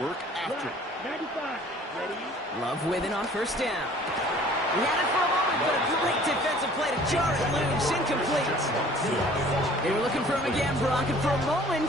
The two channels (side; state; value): both; normal; correlation 0.51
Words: work after it. 95. Ready? Love with it on 1st down. He had it for a moment, but a great defensive play to jar it loose. Incomplete. They were looking for him again, Brock, and for a